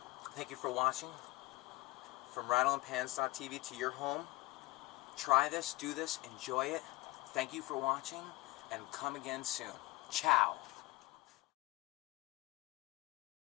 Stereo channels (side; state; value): right; quieter; 21.3 dB